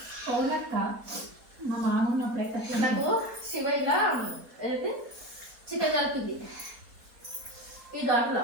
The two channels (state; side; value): late; left; 4.2 ms